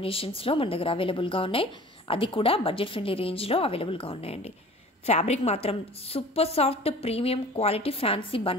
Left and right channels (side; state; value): both; normal; correlation 0.44